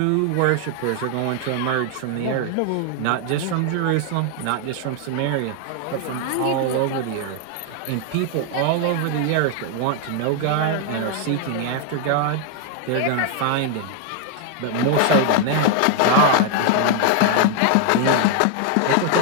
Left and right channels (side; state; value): both; different; correlation 0.00